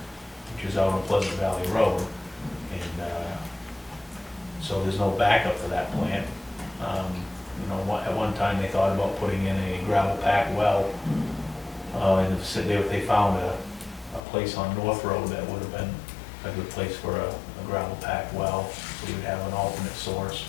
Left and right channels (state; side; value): drops out; right; at 14.2 s